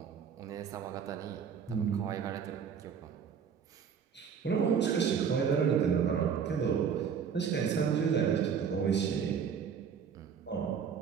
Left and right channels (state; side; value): quieter; left; 7.1 dB